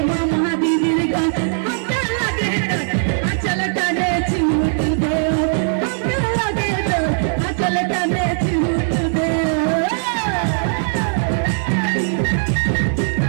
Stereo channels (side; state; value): left; silent; 67 dB below the other